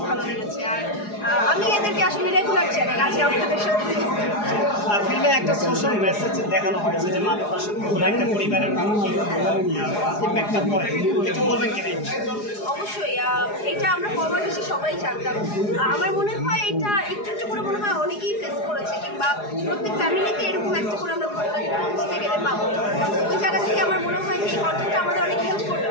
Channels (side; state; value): right; late; 4.8 ms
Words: ভালো লেগেছে। আর আমি এদেরকে আসলে রেগুলার চ্যানেল আছে আপনাদের সাথে। ফিল্মে একটা সোশ্যাল মেসেজ দেখানো হয়েছে যে মাদক একটা পরিবারের ইম্প্যাক্টটা পড়ে, একটু বলবেন কি? অবশ্যই এটা আমরা কম বেশি সবাই জানতাম। আমার মনে হয় এটা একটু একটু করে মনে হয় অনেকেই ফেস করেছে, কিংবা প্রত্যেক ফ্যামিলিতে এরকম একটা করে আমরা ঘটনা বুঝতে গেলে পাবো। ওই জায়গা থেকে আমার মনে হয় এই কন্টেন্টটা আমাদের অনেক হেল্প করবে